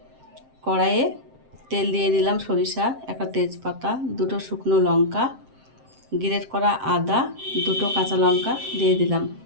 কড়াইয়ে তেল দিয়ে দিলাম সরিষা, একটা তেজপাতা, দুটো শুকনো লঙ্কা, গ্রেট করা আদা, দুটো কাঁচা লঙ্কা দিয়ে দিলাম।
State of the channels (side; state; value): left; late; 7.6 ms